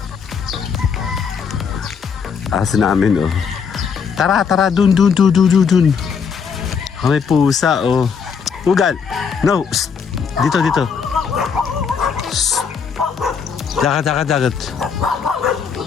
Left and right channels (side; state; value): right; quieter; 6.3 dB